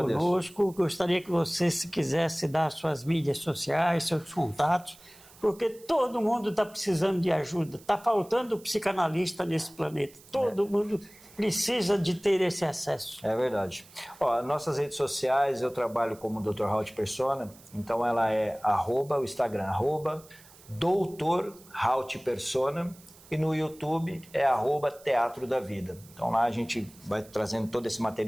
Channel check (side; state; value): right; noise; hiss, 23 dB below the sound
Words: Gostaria que você, se quisesse, dar suas mídias sociais, seus contatos, porque todo mundo está precisando de ajuda. Está faltando psicanalista nesse planeta. Todo mundo precisa de ter esse acesso. É verdade. Ó, nossas redes sociais, eu trabalho como Dr. Haut Persona, então ela é o Instagram, Dr. Haut Persona, e no YouTube é Teatro da Vida. Então lá a gente vai trazendo todo esse